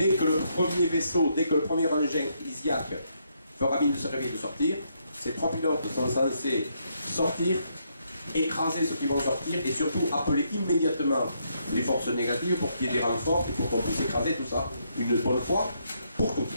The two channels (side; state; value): both; inverted; correlation -0.75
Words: que le premier vaisseau, dès que le premier engin Isiac fera mine de se réveiller et de sortir. Ces 3 pilotes sont censés sortir, écraser ceux qui vont sortir et surtout appeler immédiatement les forces négatives pour qu'il y ait des renforts et pour qu'on puisse écraser tout ça une bonne fois pour toutes.